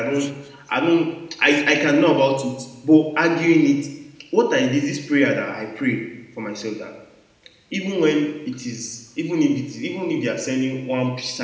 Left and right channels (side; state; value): both; identical; correlation 1.00